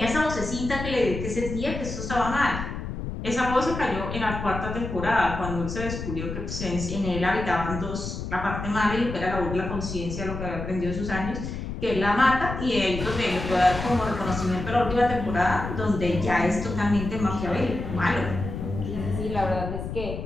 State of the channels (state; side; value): noise; left; rumble, 6 dB below the sound